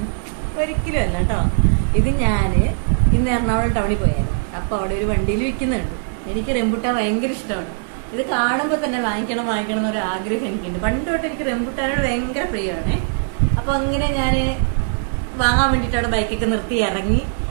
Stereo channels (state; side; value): silent; left; digital silence